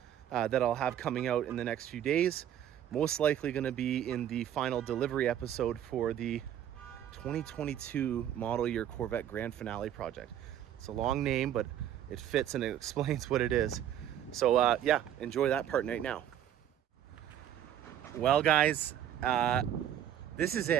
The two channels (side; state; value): left; quieter; 10.7 dB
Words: that I'll have coming out in the next few days. Most likely going to be in the final delivery episode for the 2022 model year Corvette Grand Finale project. It's a long name, but it fits and it explains what it is. So yeah, enjoy that part right now. Well, guys, this is